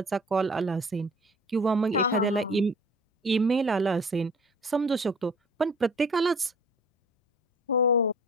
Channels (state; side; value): normal; both; correlation 0.47